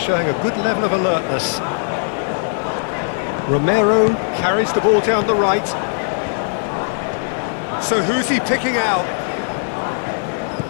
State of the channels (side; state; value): right; silent; digital silence